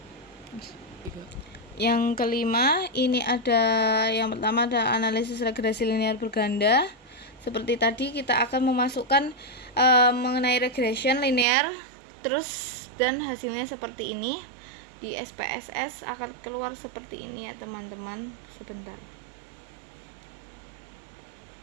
Yang kelima, ini yang pertama ada analisis regresi linear berganda. Seperti tadi kita akan memasukkan mengenai regression linear, terus dan hasilnya seperti ini. Di SPSS akan keluar seperti ini ya teman-teman. Sebentar.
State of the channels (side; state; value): left; drops out; at 11.5 s